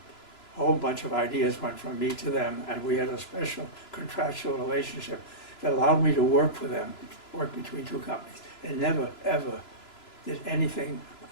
whole bunch of ideas went from me to them, and we had a special contractual relationship that allowed me to work for them, work between two companies. They never, ever did anything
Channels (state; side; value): late; right; 3.0 ms